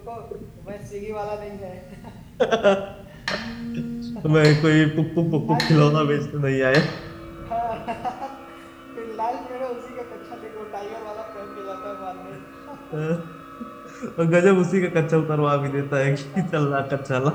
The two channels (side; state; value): both; identical; correlation 1.00